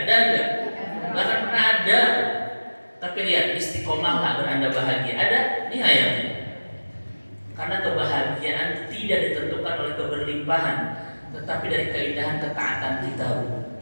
nggak? Nggak akan pernah ada. Tapi lihat, istiqomahlah agar Anda bahagia. Ada? Ini ayatnya. Karena kebahagiaan tidak ditentukan oleh keberlimpahan, tetapi dari keindahan ketaatan kita.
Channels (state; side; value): inverted; both; correlation -1.00